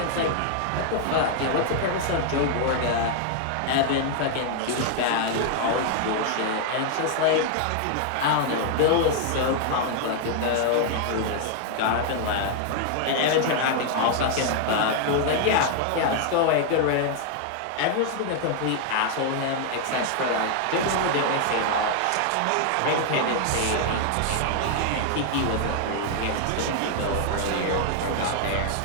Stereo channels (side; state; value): both; different; correlation 0.00